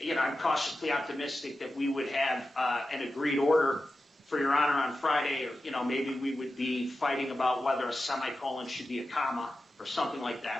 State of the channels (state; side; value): normal; both; correlation 0.92